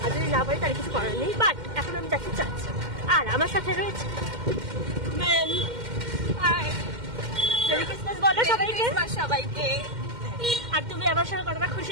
আর যদি না পারি তাহলে কিছু করার নেই। বাট এখন আমি যাচ্ছি চার্চে, আর আমার সাথে রয়েছে ম্যাম। মেরি ক্রিসমাস বলো সবাইকে। সবাইকে। আর তুমি আমার সঙ্গে কতটা খুশি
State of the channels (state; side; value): late; left; 2.1 ms